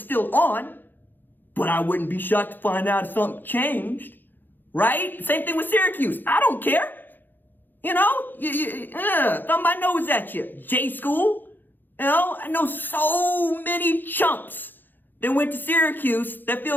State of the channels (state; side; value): late; right; 0.090 ms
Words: on, but I wouldn't be shocked to find out if something changed, right? Same thing with Syracuse. I don't care. You know, thumb my nose at you. J school. You know, I know so many chumps that went to Syracuse that